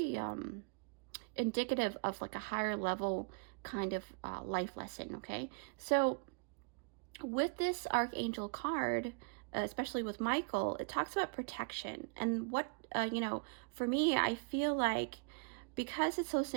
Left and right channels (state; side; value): quieter; left; 36.4 dB